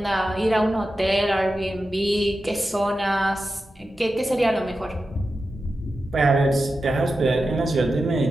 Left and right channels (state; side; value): normal; both; correlation 0.91